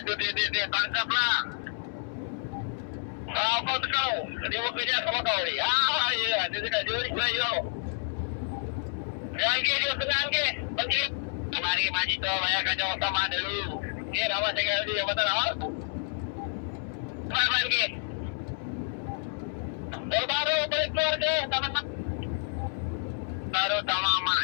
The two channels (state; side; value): silent; right; 58 dB below the other